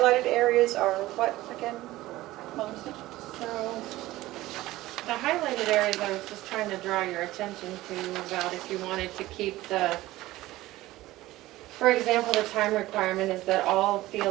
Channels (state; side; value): quieter; left; 17.1 dB